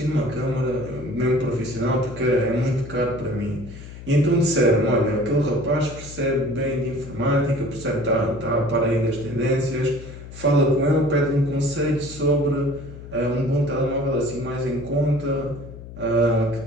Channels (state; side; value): noise; left; hum, 14 dB below the sound